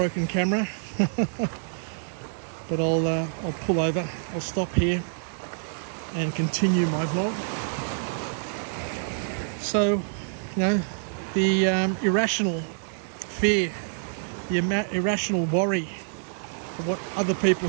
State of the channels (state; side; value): silent; left; digital silence